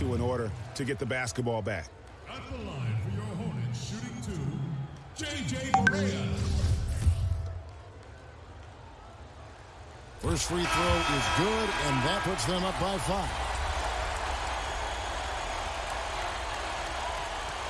in order to get the basketball back. At the line for your Hornets, shooting 2, J.J. Correa. First free throw is good, and that puts them up by 5.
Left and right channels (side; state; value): both; identical; correlation 1.00